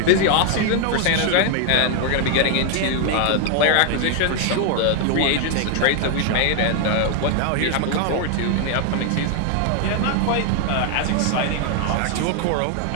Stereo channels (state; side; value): different; both; correlation 0.00